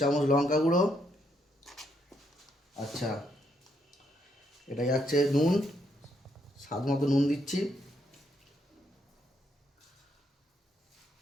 লঙ্কা গুঁড়ো। আচ্ছা, এটা যাচ্ছে নুন, স্বাদ মতো নুন দিচ্ছি।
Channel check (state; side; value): normal; both; correlation 0.75